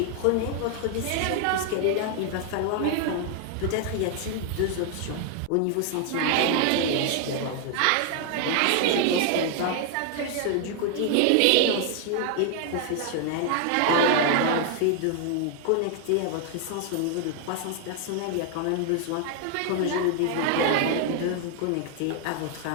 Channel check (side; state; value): both; different; correlation 0.00